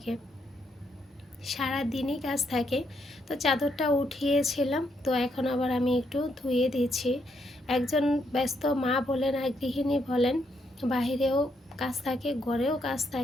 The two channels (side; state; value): both; normal; correlation 0.76